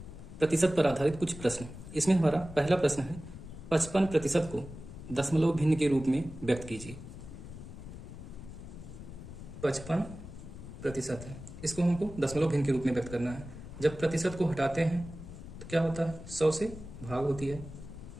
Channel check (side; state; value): left; noise; rumble, 13 dB below the sound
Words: प्रतिशत पर आधारित कुछ प्रश्न। इसमें हमारा पहला प्रश्न है 55% को दशमलव भिन्न के रूप में व्यक्त कीजिए। 55% है, इसको हमको दशमलव भिन्न के रूप में व्यक्त करना है। जब प्रतिशत को हटाते हैं तो क्या होता है, 100 से भाग होती है,